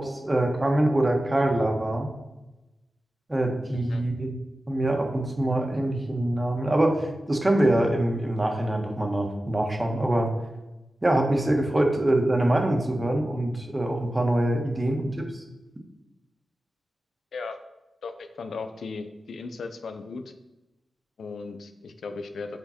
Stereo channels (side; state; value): both; normal; correlation 0.94